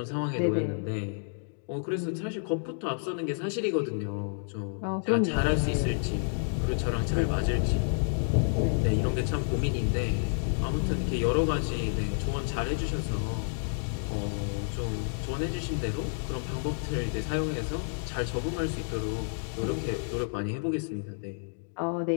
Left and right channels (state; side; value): silent; right; digital silence